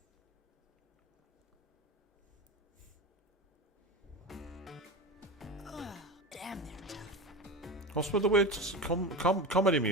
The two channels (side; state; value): both; normal; correlation 0.26